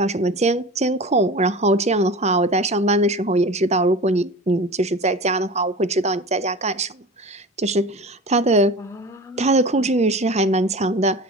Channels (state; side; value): normal; both; correlation 0.33